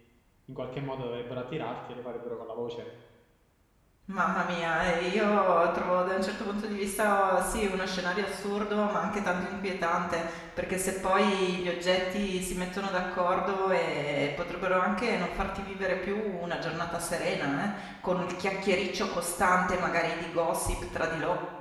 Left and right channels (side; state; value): both; identical; correlation 1.00